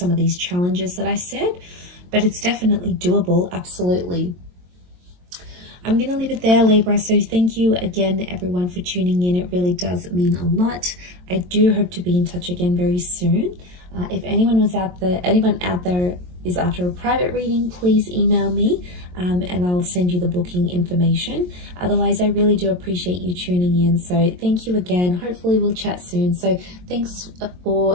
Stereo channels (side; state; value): left; late; 22 ms